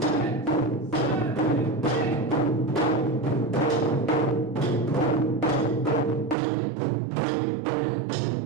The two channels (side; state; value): left; drops out; at 6.4 s